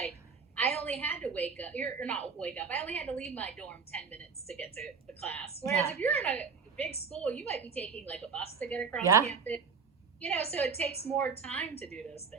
I only had to I only had to leave my dorm 10 minutes to get to the class. Whereas if you're in a big school, you might be taking like a bus to get across campus. So it takes more time to do those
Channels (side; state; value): left; quieter; 5.5 dB